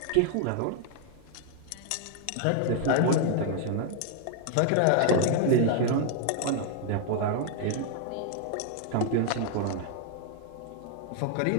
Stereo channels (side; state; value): both; different; correlation 0.00